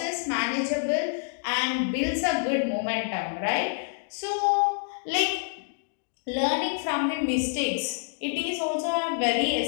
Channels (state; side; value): silent; right; digital silence